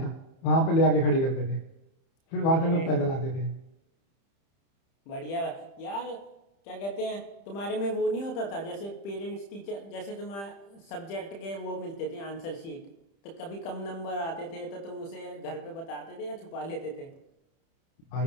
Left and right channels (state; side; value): late; right; 30 ms